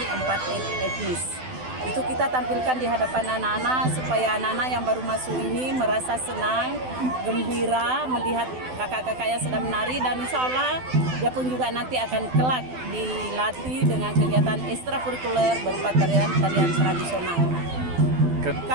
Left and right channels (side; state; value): left; late; 12 ms